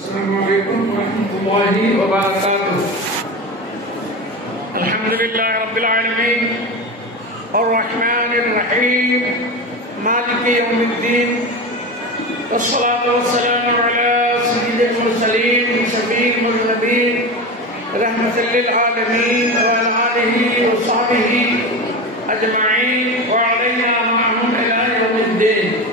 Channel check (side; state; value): both; normal; correlation 0.24